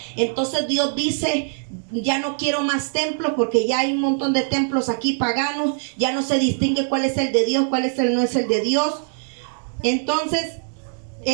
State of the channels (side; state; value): left; silent; digital silence